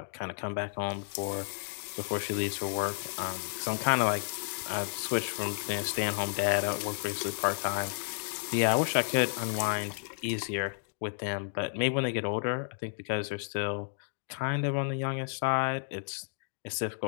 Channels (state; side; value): silent; right; digital silence